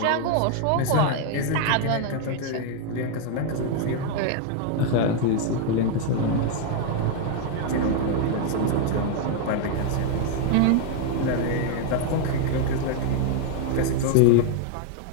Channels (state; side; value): different; both; correlation 0.00